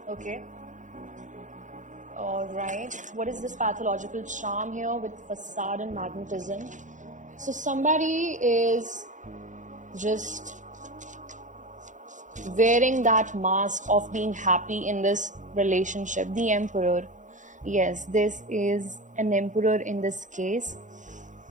okay? All right. What is this pathological charm here with facade and magnetism? So somebody is just wearing that mask of being happy in this relationship. The Emperor. Yes, this is an Emperor in this case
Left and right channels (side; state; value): left; late; 0.36 ms